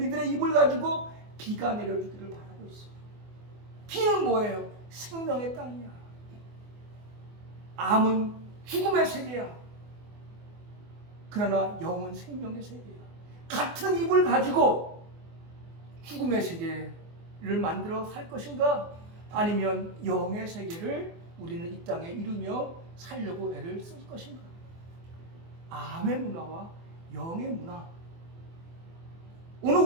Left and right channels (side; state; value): left; late; 24 ms